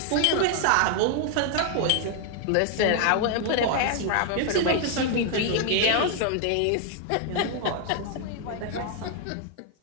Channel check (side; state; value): both; different; correlation 0.00